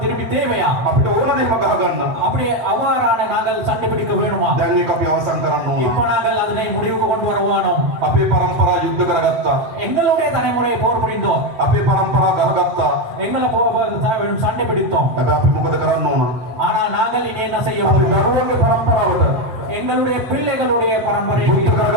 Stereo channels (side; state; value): left; late; 8.0 ms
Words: தேவையா? අපිට ඕන දෙයක් ගහ ගන්න. அப்படி அவ்வாறான நாங்கள் சண்டை பிடிக்க வேணுமா? දැන් මේක අපි අවසන් කරන්න ඕන. இப்ப நாங்கள் அதனை முடிவுக்கு கொண்டு வர வேணும். අපේ පරම්පරා යුද්ධ කරගත්තා. எங்களுடைய தலைமுறையை போர் புரிந்தோம், අපේ පරම්පරා ගහගත්තා. எங்களை சண்டை பிடித்தோம். හැබැයි අපි මොකද කරන්න ඕන? ஆனால் நாங்கள் இனி என்ன செய்ய අපි வேண்டும்? දරුවන්ගේ පරම්පරාවට எங்களுடைய பிள்ளைகளுடைய பரம்பரைக்கு යුද්ධ